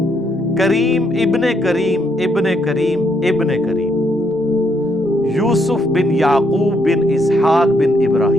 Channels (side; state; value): both; normal; correlation 0.73